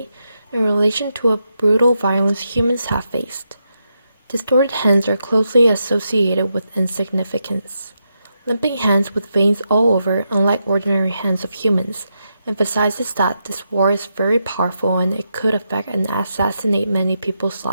in relation to a brutal violence humans have faced. Distorted hands are closely associated with insignificance. Limping hands with veins all over, unlike ordinary hands of humans, emphasizes that this war is very powerful and it could affect and assassinate many people's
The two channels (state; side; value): inverted; both; correlation -0.84